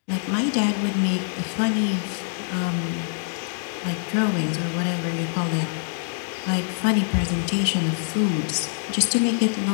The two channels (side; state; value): right; silent; digital silence